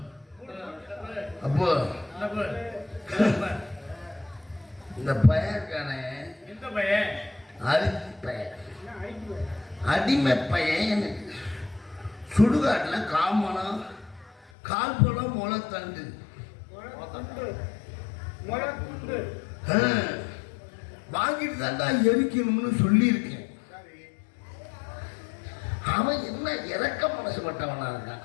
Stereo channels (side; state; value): right; drops out; at 14.5 s